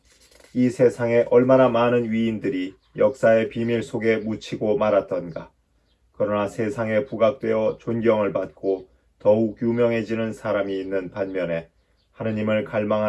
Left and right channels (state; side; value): identical; both; correlation 1.00